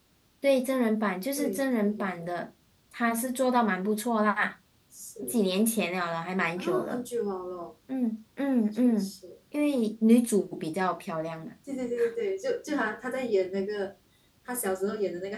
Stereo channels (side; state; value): both; identical; correlation 1.00